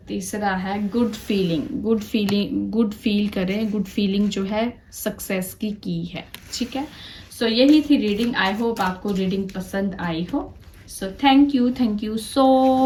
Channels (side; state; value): both; identical; correlation 1.00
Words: तीसरा है good feeling, good feeling, good feel करें, गुड फीलिंग जो है सक्सेस की है, ठीक है। सो यही थी रीडिंग। आई होप आपको रीडिंग पसंद आई हो। So thank you